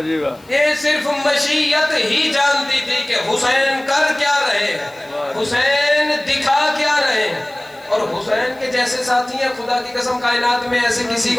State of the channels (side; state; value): left; noise; hiss, 28 dB below the sound